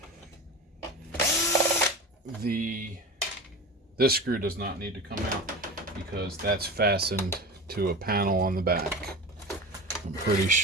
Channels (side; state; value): both; normal; correlation 0.30